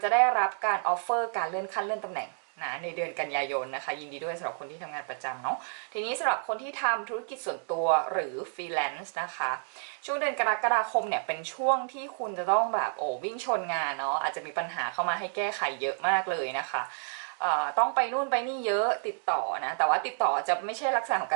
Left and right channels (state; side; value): silent; left; digital silence